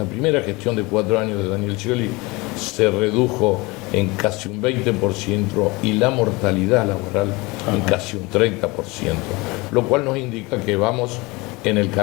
primera gestión de 4 años de Daniel Scioli se redujo en casi un 20% y la mortalidad laboral en casi un 30%, lo cual nos indica que vamos en el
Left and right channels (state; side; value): quieter; right; 24.0 dB